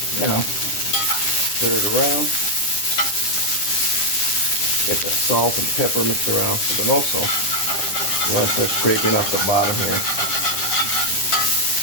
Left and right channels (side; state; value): right; late; 10 ms